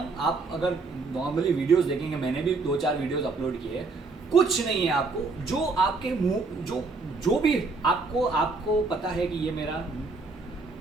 आप अगर नॉर्मली वीडियोस देखेंगे, मैंने भी 2-4 वीडियोस अपलोड किए हैं, कुछ नहीं है आपको, जो आपके मुंह जो भी आपको पता है कि ये मेरा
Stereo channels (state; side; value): quieter; left; 3.9 dB